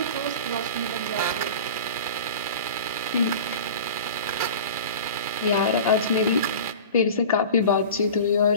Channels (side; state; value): both; inverted; correlation -0.36